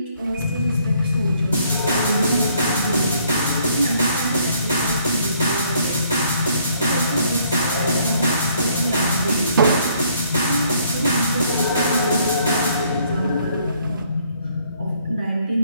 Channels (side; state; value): both; inverted; correlation -0.65